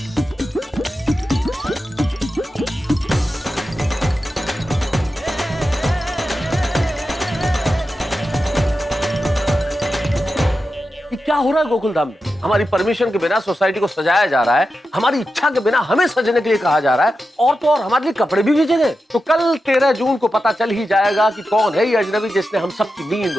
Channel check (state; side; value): normal; both; correlation 0.91